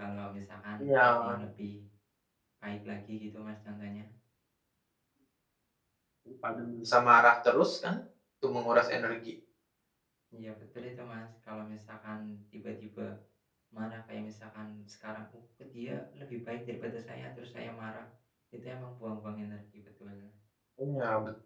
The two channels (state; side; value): identical; both; correlation 1.00